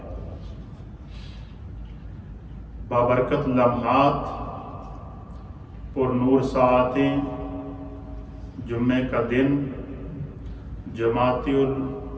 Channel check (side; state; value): both; identical; correlation 1.00